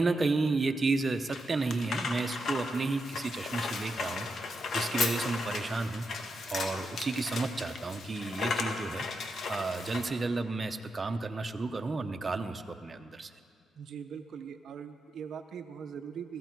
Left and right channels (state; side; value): normal; both; correlation 0.85